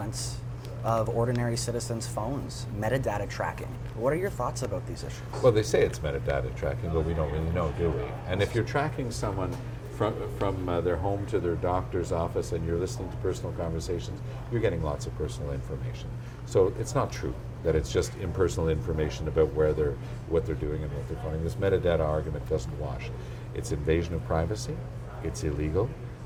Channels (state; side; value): identical; both; correlation 1.00